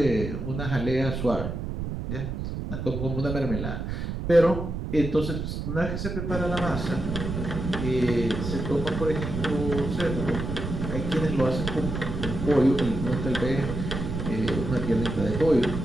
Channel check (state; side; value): noise; right; rumble, 4 dB below the sound